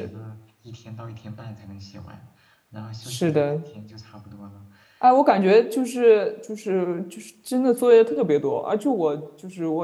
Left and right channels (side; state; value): both; identical; correlation 1.00